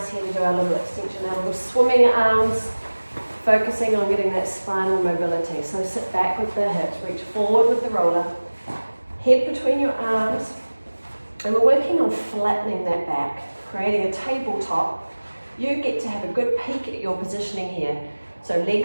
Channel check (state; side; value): inverted; both; correlation -1.00